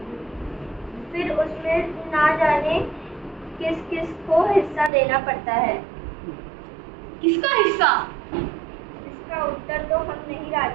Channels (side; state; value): left; drops out; at 4.9 s